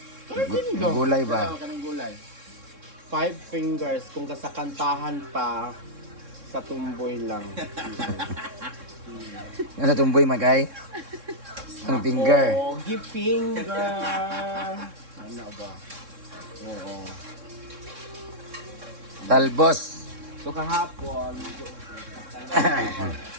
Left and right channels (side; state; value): left; late; 3.6 ms